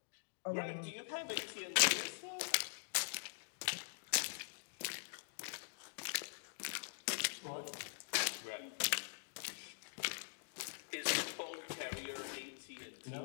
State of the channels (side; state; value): right; silent; digital silence